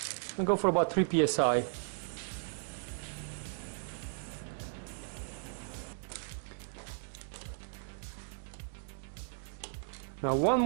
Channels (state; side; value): silent; left; digital silence